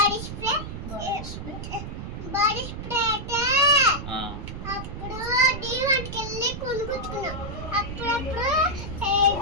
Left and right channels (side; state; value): right; noise; rumble, 8 dB below the sound